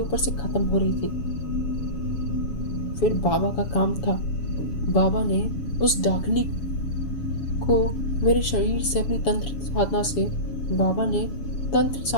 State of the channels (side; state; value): right; late; 7.1 ms